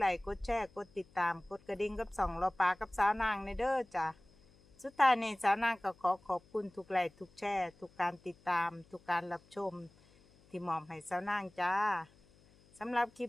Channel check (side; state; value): left; noise; hum, 28 dB below the sound